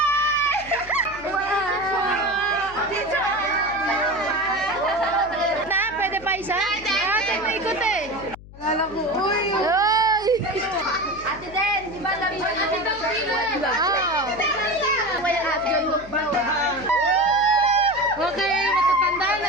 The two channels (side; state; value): left; noise; hum, 18 dB below the sound